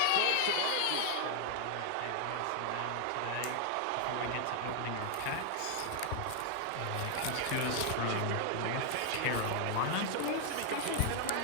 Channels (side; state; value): both; different; correlation 0.00